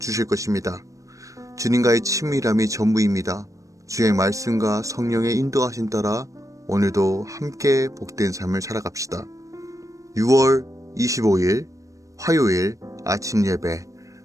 것입니다. 주님과의 친밀함이 전부입니다. 주의 말씀과 성령의 인도하심 따라 오늘도 함께 복된 삶을 살아갑시다. 6월 25일 화요일 아침 예배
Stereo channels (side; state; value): left; late; 0.16 ms